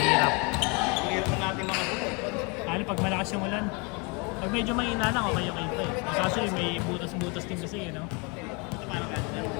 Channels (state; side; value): quieter; right; 31.0 dB